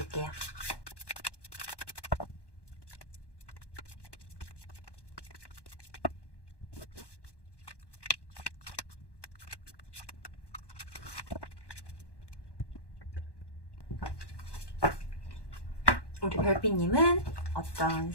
우리 별빛님은 어떤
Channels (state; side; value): late; right; 1.1 ms